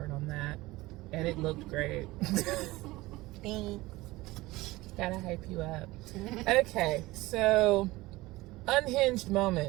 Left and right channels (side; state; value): left; quieter; 19.8 dB